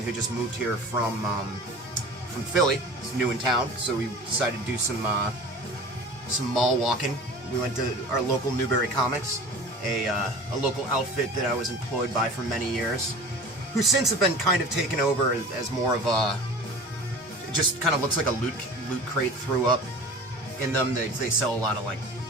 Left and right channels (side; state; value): both; normal; correlation 0.39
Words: who just moved here from Philly. He's new in town, so we decided to do some mall walking. We went to our local Newbury Comics, a local outfit that I was employed by for many years, who since have been kind of taken over as more of a, it just kind of looks like a loot crate threw up in them. They sell a lot of like